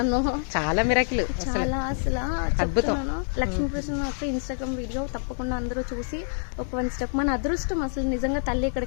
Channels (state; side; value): silent; right; digital silence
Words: చాలా మిరాకిల్, చాలా అసలు అద్భుతం. లక్ష్మీకృష్ణ యొక్క ఇన్స్టాగ్రామ్ వీడియో తప్పకుండా అందరూ చూసి ఒక 1 step. మన అదృష్టం అసలు నిజంగా తల్లి